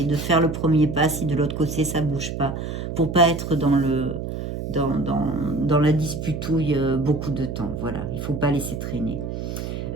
de faire le premier pas si de l'autre côté ça bouge pas, pour pas être dans la disputouille beaucoup de temps. Voilà, il faut pas laisser traîner.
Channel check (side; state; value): right; noise; hum, 5 dB below the sound